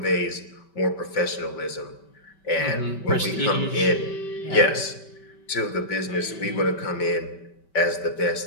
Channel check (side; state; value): right; late; 5.2 ms